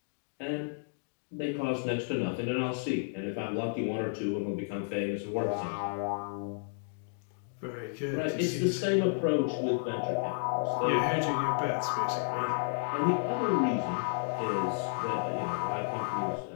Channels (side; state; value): right; silent; digital silence